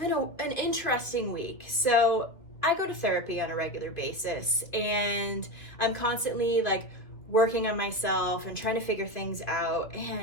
an interesting week. So I go to therapy on a regular basis and I'm constantly working on myself and trying to figure things out.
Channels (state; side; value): late; right; 2.3 ms